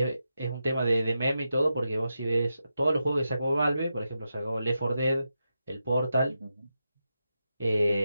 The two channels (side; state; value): both; inverted; correlation -0.87